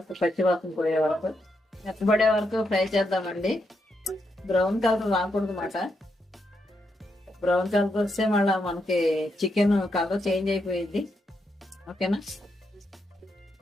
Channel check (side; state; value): both; normal; correlation 0.82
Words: పచ్చివాసన పోయే వరకు, మెత్తబడే వరకు ఫ్రై చేద్దామండి. బ్రౌన్ కలర్ రాకూడదు అన్నమాట. బ్రౌన్ కలర్ వస్తే మళ్ళీ మనకి చికెన్ కలర్ చేంజ్ అయిపోయింది. ఓకేనా?